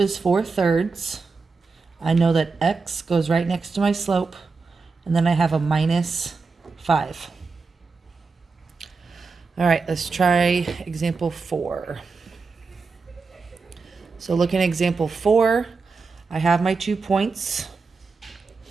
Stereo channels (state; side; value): quieter; left; 4.5 dB